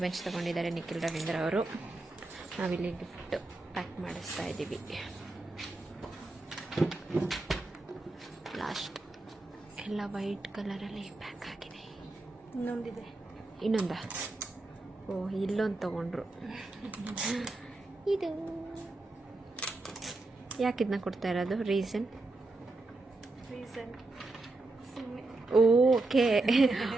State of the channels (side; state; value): left; quieter; 3.0 dB